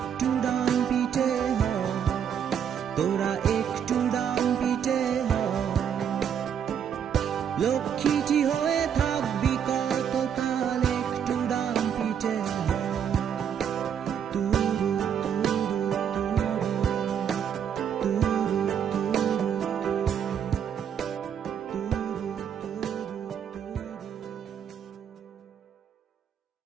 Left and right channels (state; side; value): quieter; left; 8.3 dB